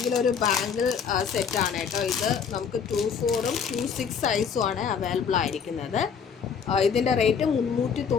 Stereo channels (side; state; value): right; quieter; 6.7 dB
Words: ഒരു ബാംഗിൾ സെറ്റാണ് കേട്ടോ. ഇത് നമുക്ക് 24ഉം 26 സൈസും ആണ് അവൈലബിൾ ആയിരിക്കുന്നത്. ഇതിൻ്റെ റേറ്റ്